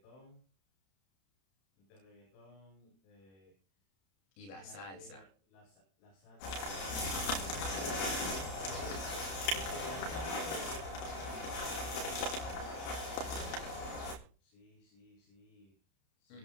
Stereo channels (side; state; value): right; late; 31 ms